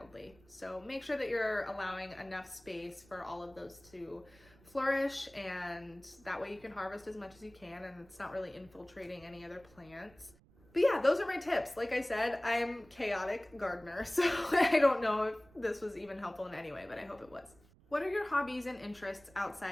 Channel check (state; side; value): noise; right; rumble, 27 dB below the sound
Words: so make sure that you're allowing enough space for all of those to flourish, and that way you can harvest as much as you can and it's not really infiltrating any other plants. But yeah, those are my tips. Like I said, I'm a chaotic gardener, so I don't know if this was even helpful in any way, but I hope it was. What are your hobbies and interests